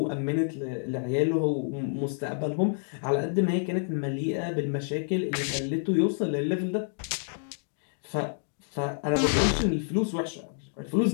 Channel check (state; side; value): silent; right; digital silence